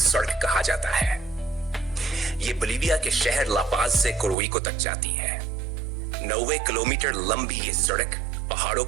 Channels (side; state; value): left; drops out; at 4.4 s